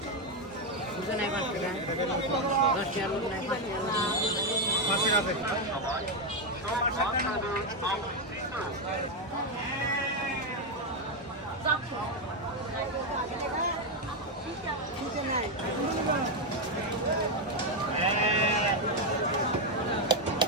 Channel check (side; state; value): both; normal; correlation 0.05